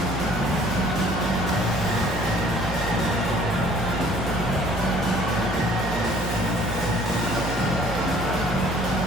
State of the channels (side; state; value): both; normal; correlation 0.55